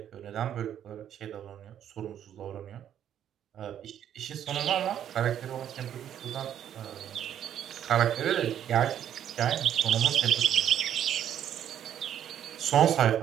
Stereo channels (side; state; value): left; quieter; 10.1 dB